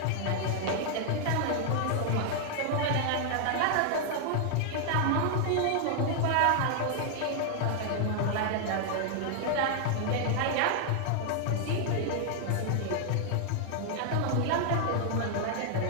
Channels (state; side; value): different; both; correlation 0.00